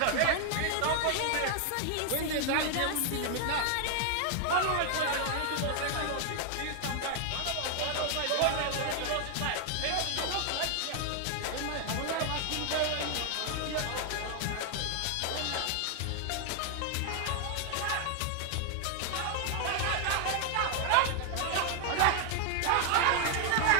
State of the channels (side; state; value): both; different; correlation 0.00